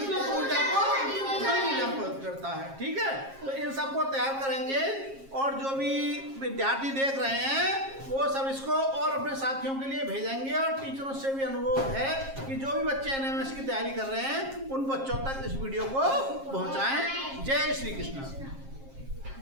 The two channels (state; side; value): late; left; 7.4 ms